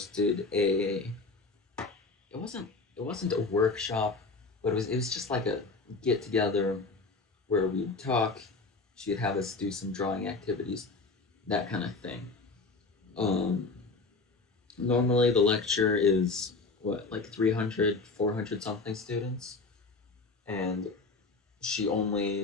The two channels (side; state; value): right; quieter; 3.9 dB